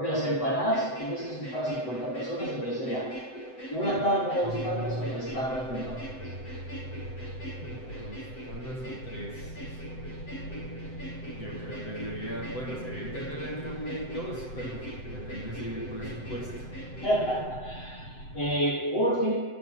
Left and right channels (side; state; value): right; late; 7.8 ms